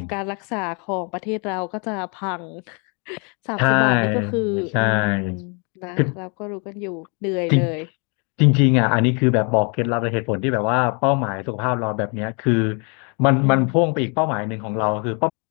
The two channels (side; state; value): right; quieter; 35.4 dB